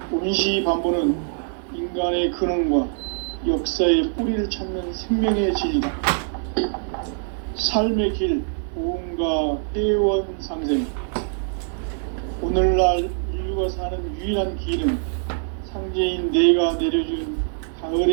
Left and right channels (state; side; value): silent; left; 63 dB below the other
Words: 온시반본은 인간의 근원과 역사의 뿌리를 찾는 생명의 진리다. 삶의 길, 보험과 회원 상생. 오늘날 인류가 사는 유일한 길은 상제인 내가 내려준